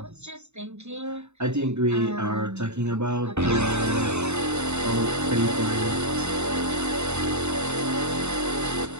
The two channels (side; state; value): left; late; 0.82 ms